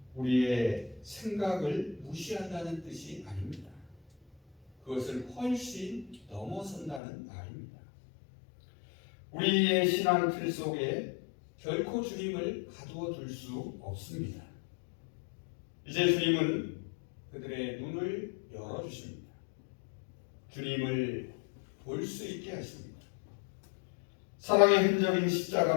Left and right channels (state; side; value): drops out; right; at 7.0 s